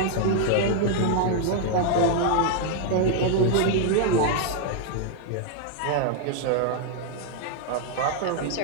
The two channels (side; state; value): both; different; correlation 0.00